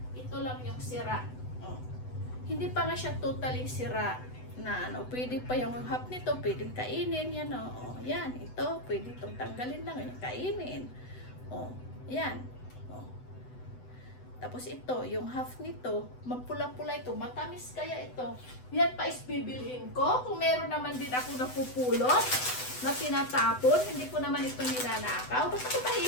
ito lang yung sira. Oh. Hindi pa nga siya totally sira na ano, pwede pa yung half nito, pwedeng kainin, yan o. Oh. Yan, ito, pwede itong tanggalin lang, yung kainin. Oh, yan. Oh. Tapos ito, yung half nito, mapula-pula ito, matamis kaya ito. Yan pa is bibilhin ko. Kung meron naman din ako napupulot, na tinatapon, hindi ko naman ito nilanakaw. Basta ko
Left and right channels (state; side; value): late; right; 8.0 ms